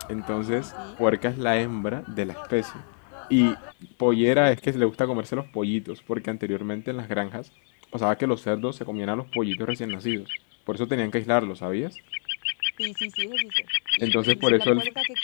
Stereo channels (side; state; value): right; silent; 61 dB below the other